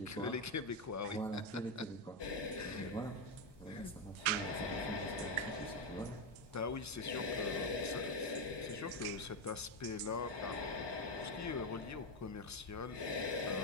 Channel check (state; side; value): normal; both; correlation 0.07